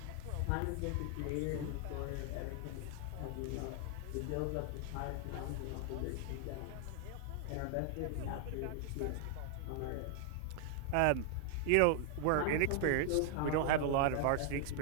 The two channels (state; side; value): different; both; correlation 0.00